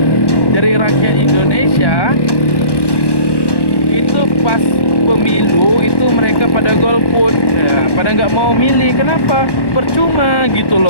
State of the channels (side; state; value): right; late; 1.1 ms